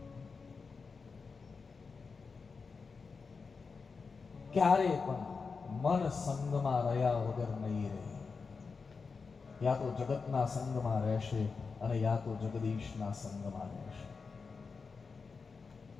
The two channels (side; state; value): right; quieter; 4.9 dB